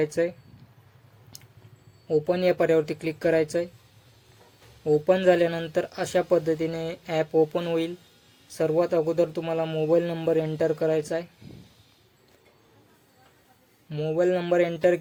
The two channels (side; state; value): both; identical; correlation 1.00